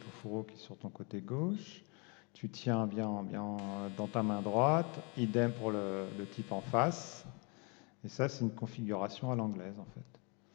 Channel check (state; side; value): quieter; right; 32.7 dB